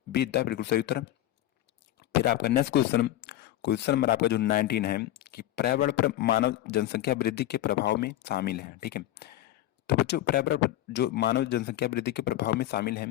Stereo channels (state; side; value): quieter; right; 13.8 dB